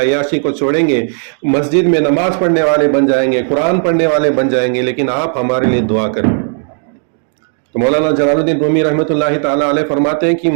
کو چھوڑیں گے, مسجد میں نماز پڑھنے والے بن جائیں گے, قرآن پڑھنے والے بن جائیں گے, لیکن آپ ہمارے لیے دعا کریں. تو مولانا جلال الدین رومی رحمۃ اللہ تعالیٰ علیہ فرماتے ہیں کہ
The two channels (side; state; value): left; silent; 55 dB below the other